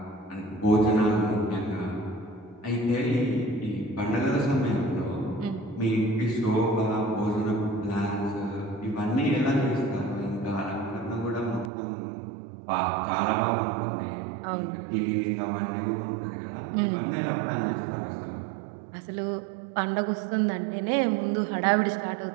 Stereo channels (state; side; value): drops out; left; at 11.7 s